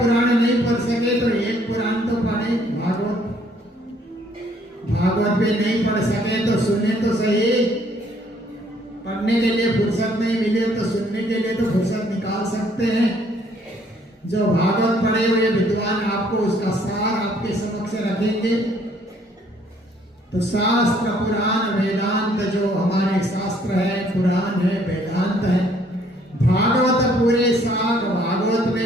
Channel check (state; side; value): normal; both; correlation 0.63